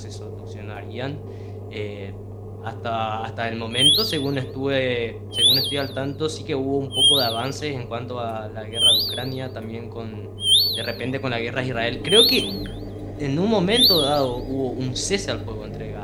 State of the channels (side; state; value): both; identical; correlation 1.00